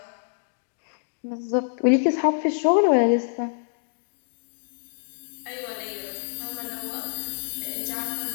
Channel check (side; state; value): right; silent; digital silence